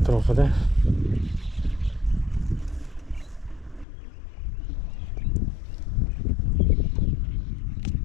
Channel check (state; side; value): drops out; right; at 3.9 s